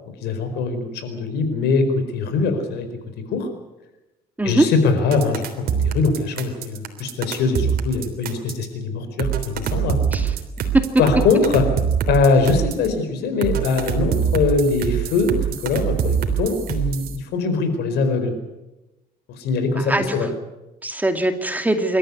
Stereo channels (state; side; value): normal; both; correlation 0.45